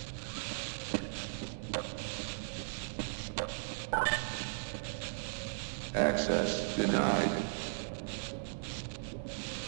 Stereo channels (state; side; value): silent; left; digital silence